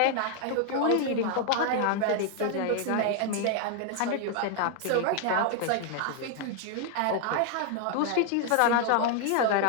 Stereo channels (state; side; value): different; both; correlation 0.00